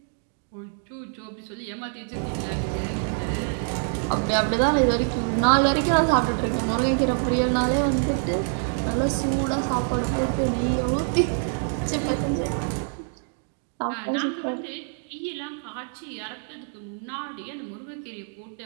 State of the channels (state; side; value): silent; left; 61 dB below the other